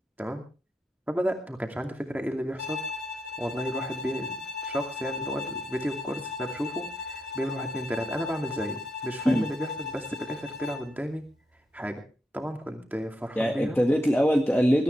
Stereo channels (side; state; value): both; normal; correlation 0.84